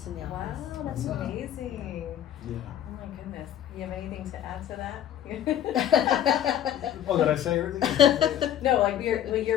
in the Wow, office. that's amazing. Yeah. Oh my goodness. You have anything to add to that? Oh, did I say everything? No, like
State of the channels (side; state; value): right; quieter; 10.8 dB